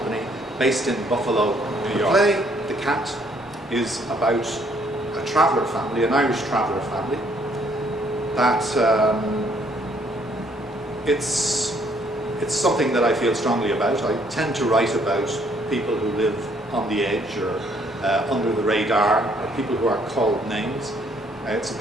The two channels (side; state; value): both; normal; correlation 0.66